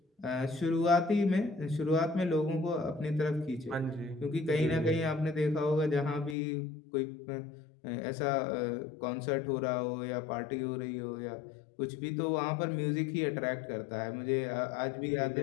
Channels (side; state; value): right; drops out; at 6.4 s